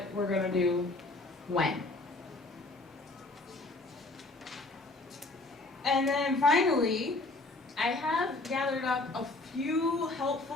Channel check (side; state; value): right; quieter; 3.0 dB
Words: we're going to do when. And then finally, I have gathered up a few